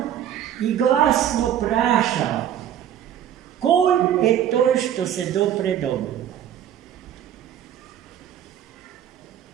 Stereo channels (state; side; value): quieter; left; 10.4 dB